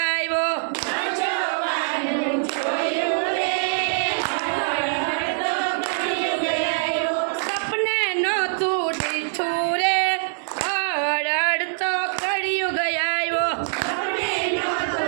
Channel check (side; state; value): left; silent; 56 dB below the other